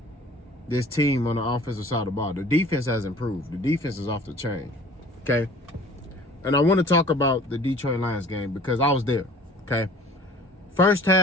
this team on the offensive side of the ball. The defense has improved. The defense is off the chain. Okay? And I want to talk about the Detroit Lions game because I was there. Okay? First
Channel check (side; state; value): both; normal; correlation 0.48